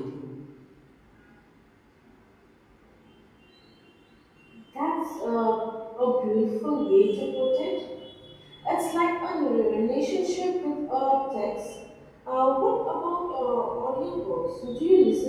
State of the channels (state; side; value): identical; both; correlation 1.00